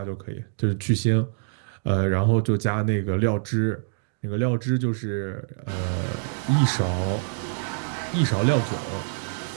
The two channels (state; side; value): silent; left; digital silence